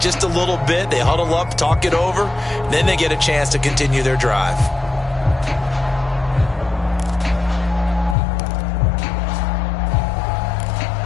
a little bit. They huddle up, talk it over, then they get a chance to continue their drive.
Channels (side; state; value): right; drops out; at 8.2 s